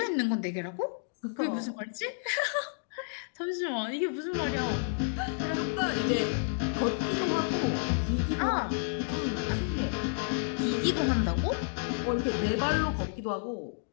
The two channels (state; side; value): silent; right; digital silence